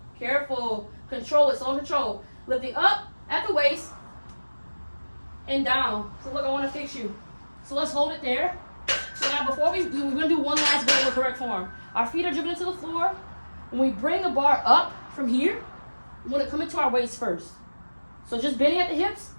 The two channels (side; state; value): both; inverted; correlation -1.00